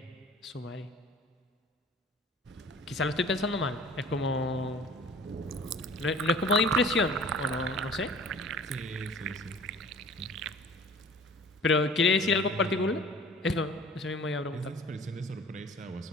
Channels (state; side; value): normal; both; correlation 0.45